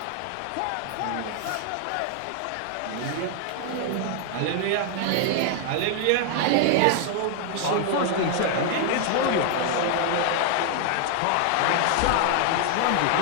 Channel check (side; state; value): both; different; correlation 0.00